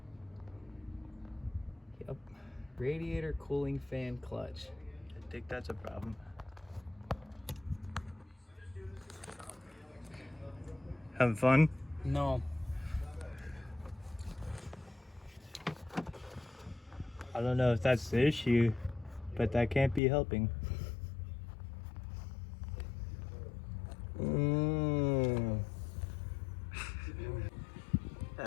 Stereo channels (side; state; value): right; drops out; at 20.0 s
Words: Yep. Radiator cooling fan clutch. I think that's a problem. Having fun? No. I don't know if that's the issue, but that can't be helping.